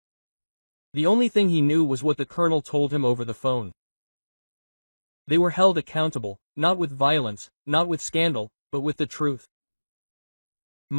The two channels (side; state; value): both; inverted; correlation -1.00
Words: The only thing he knew was what the colonel told him over the phone. They were held accountable, not with violence, not with scandal, but with the truth.